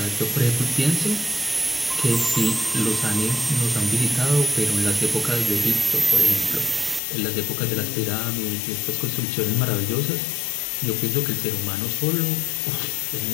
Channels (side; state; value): right; drops out; at 7.0 s